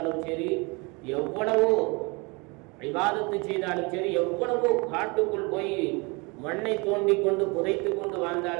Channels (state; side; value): quieter; left; 28.4 dB